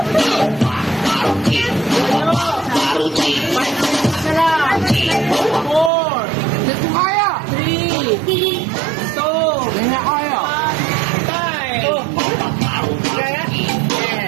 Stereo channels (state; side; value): drops out; left; at 5.9 s